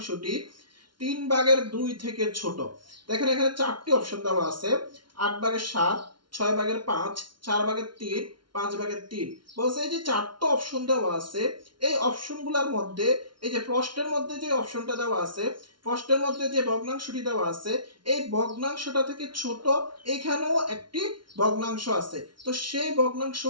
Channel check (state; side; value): late; left; 0.72 ms